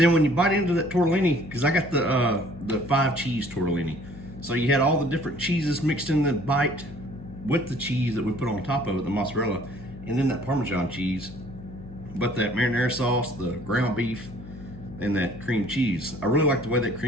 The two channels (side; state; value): left; noise; hum, 15 dB below the sound